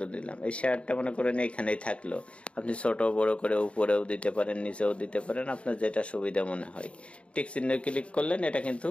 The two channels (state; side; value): late; right; 0.061 ms